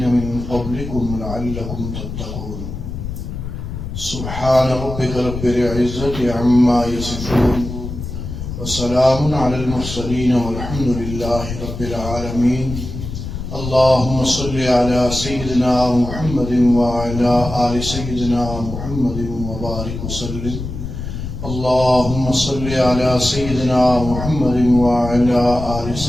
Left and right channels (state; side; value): noise; left; rumble, 7 dB below the sound